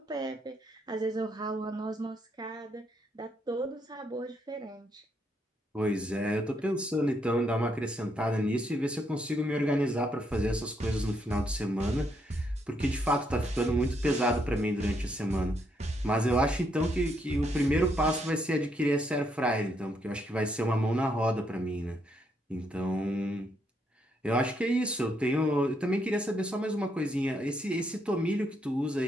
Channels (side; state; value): both; normal; correlation 0.75